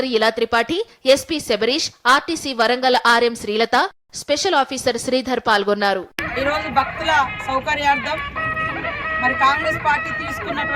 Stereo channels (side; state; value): both; identical; correlation 1.00